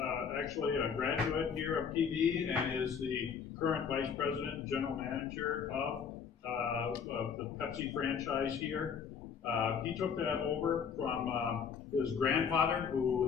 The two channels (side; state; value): right; quieter; 6.8 dB